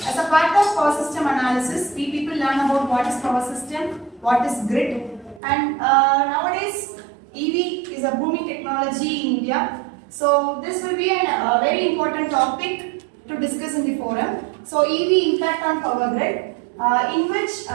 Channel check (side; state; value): left; drops out; at 5.4 s